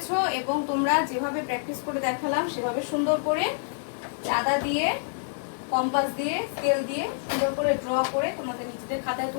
এবং তোমরা যেভাবে প্র্যাকটিস করে দেখালাম সেভাবে সুন্দর করে চাঁদা দিয়ে, কম্পাস দিয়ে, স্কেল দিয়ে সুন্দর করে ড্র করে তোমাদের নিজেদের খাতায়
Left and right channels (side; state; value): right; silent; digital silence